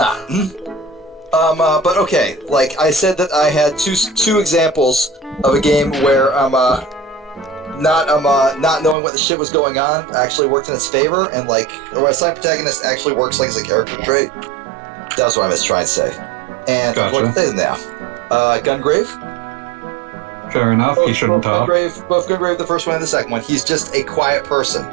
But okay, like I said that I had two examples of a game where not knowing what the shit was going on actually worked in its favor, and like where a side protagonist actually works like as a character trait. That's what I was trying to say. And gotcha. what to say now? Gungrave? Fair enough, he shouldn't talk. Both Gungrave, the first one and the second one. He's just a quiet person.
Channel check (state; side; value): drops out; left; at 9.0 s